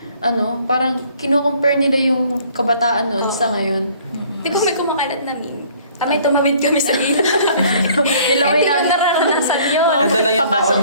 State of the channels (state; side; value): inverted; both; correlation -0.57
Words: parang kinukompare nila yung kabataan noon sa ngayon. Di ba may kumakalat na meme? Tamay tumawid kami sa ilaw. Nilaway Hindi ko namin. nararanasan yun. Ito lang yung baon